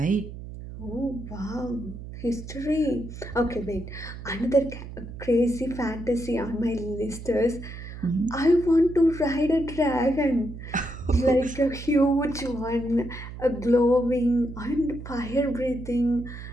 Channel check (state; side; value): noise; right; hum, 11 dB below the sound